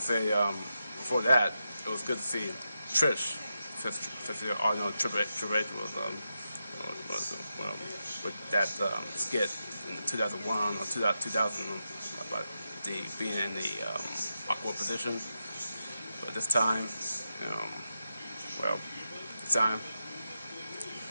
say before that it was good to see Trish, since you all know Triple H was with that skit in 2001 or 2000 about being in the awkward position. But this time,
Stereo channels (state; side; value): inverted; both; correlation -0.87